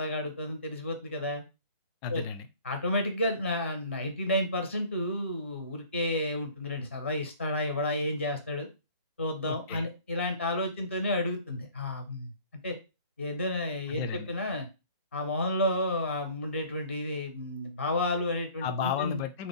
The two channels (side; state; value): both; inverted; correlation -0.51